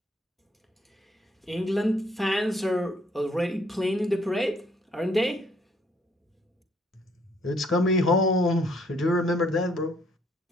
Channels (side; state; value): both; normal; correlation 0.65